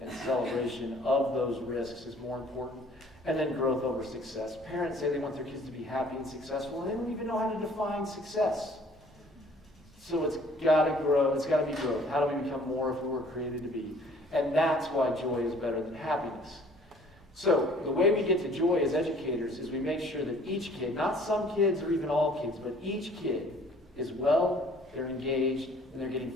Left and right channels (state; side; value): normal; both; correlation 0.55